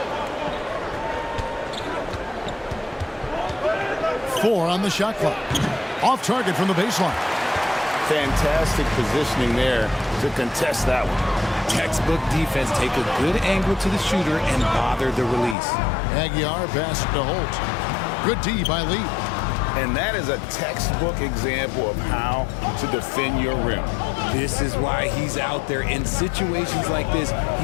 Four on the shot clock. Off target from the baseline. Fantastic positioning there to contest that one. Textbook defense. Take a good angle to the shooter and bother the release. Aguilar pass to Holt. Good D by Lee. And that is a textbook example of how to defend your rim. This is why he's out there. In situations like this,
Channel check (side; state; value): right; drops out; at 15.6 s